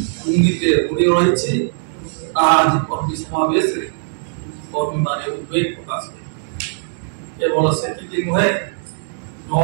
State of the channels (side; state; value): left; silent; digital silence